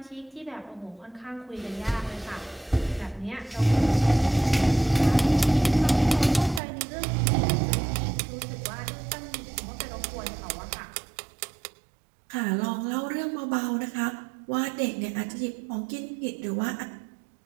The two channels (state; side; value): drops out; left; at 6.6 s